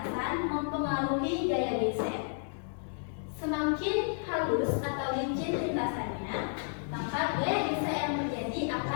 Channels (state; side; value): silent; right; digital silence